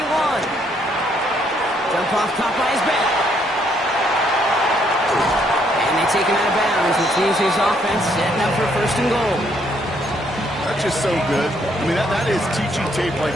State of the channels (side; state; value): both; normal; correlation 0.70